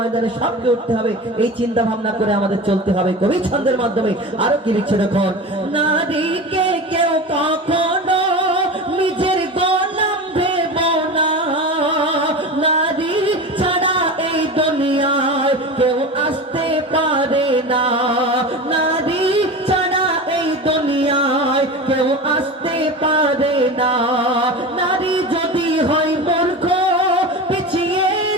সবকে উঠতে হবে, এই চিন্তা ভাবনা করে আমাদের চলতে হবে। কবি ছন্দের মাধ্যমে আরো কি লিখছে দেখো, নারীকে কেউ কখনো নিজের গোলাম ভেবো না। নারী ছাড়া এই দুনিয়ায় কেউ আসতে পারে না। নারী ছাড়া এই দুনিয়ায় কেউ আসতে পারে না। নারী যদি হয় মূর্খ পিছিয়ে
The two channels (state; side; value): normal; both; correlation 0.29